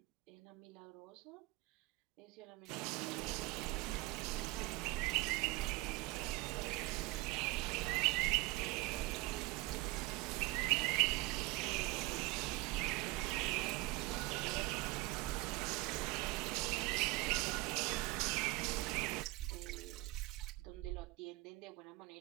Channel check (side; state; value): left; quieter; 21.4 dB